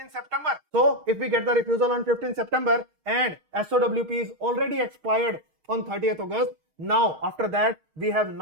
September. So if we get the refusal on 15th September and SOWP is already expired on 30th August, now after that we have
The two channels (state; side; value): late; left; 6.4 ms